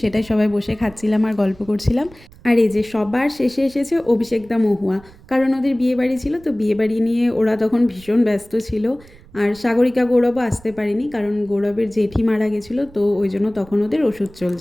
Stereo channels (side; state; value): right; noise; rumble, 23 dB below the sound